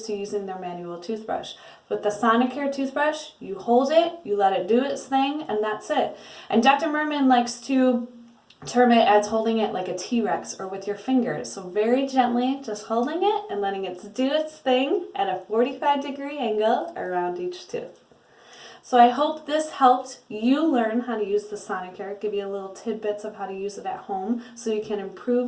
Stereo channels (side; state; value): both; identical; correlation 1.00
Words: to using their manual toothbrush. With the Sonicare toothbrush, you hold it, you let it do its thing, and that's it. And Dr. Merman likes to term it as holding it like a T-Rex or with your fingers. So very gently, just holding it and letting it do its thing at a 45-degree angle around each tooth. So I hope this helped you learn how to use the Sonicare, give you a little tidbits of how to use it at home so you can